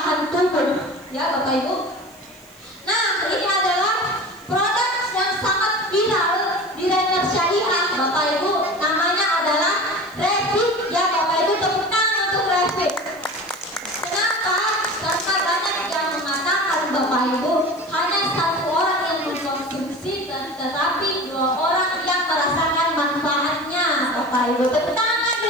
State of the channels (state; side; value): noise; left; hiss, 27 dB below the sound